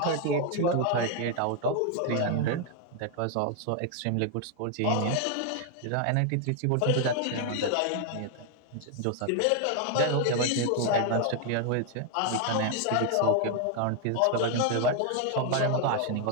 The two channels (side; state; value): both; different; correlation 0.00